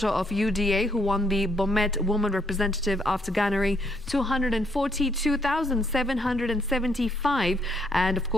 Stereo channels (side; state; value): both; normal; correlation 0.72